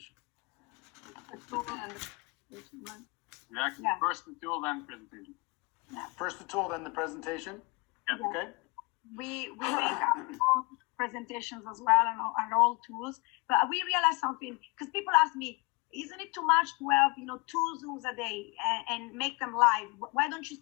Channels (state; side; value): quieter; right; 27.3 dB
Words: Exactly. Yeah. First the tool, then the presentation. First the tool, then the presentation? Yep. Okay. We make our own presentations as well, and all tools. But we realized something, because people ask me, isn't it too much to have 2 Zooms a day and make them live? Why don't you